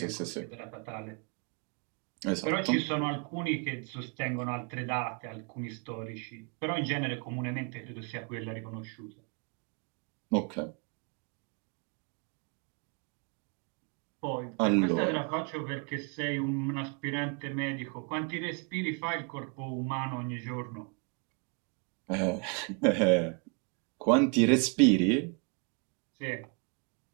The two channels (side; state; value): left; quieter; 35.4 dB